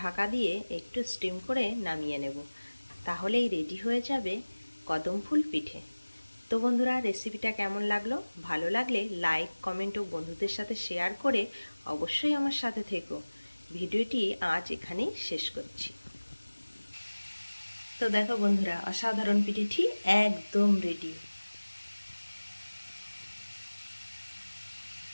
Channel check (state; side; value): inverted; both; correlation -1.00